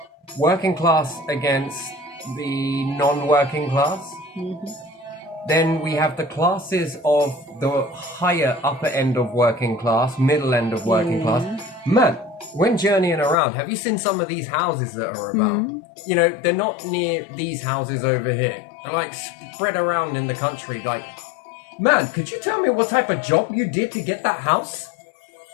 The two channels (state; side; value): drops out; right; at 13.4 s